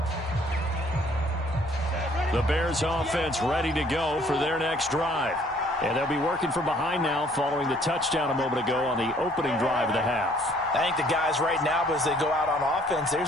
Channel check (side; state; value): both; normal; correlation 0.60